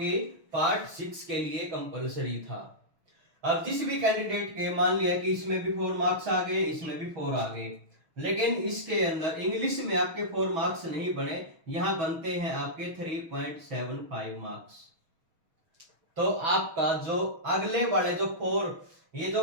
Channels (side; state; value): left; late; 6.3 ms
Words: पार्ट 6 के लिए कंपलसरी था। अब जिस भी कैंडिडेट के मान लिया कि इसमें भी 4 मार्क्स आ गए, इसमें भी 4 आ गए, लेकिन इसके अंदर इंग्लिश में आपके 4 मार्क्स नहीं बने, यहां बनते हैं आपके 3.75 मार्क्स। तो आपका जो अगले वाले जो 4, ये